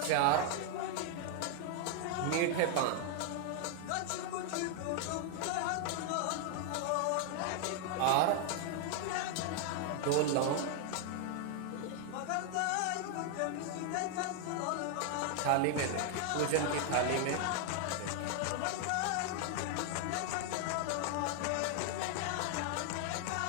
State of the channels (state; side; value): different; both; correlation 0.00